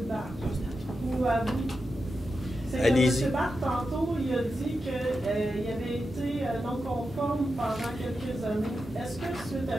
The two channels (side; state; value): both; normal; correlation 0.89